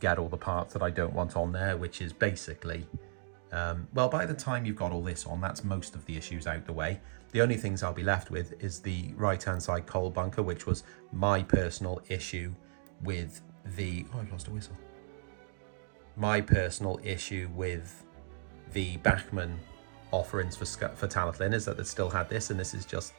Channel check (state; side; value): silent; left; digital silence